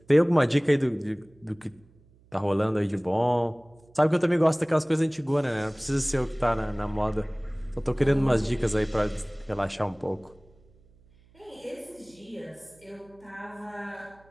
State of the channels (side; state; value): right; noise; hum, 29 dB below the sound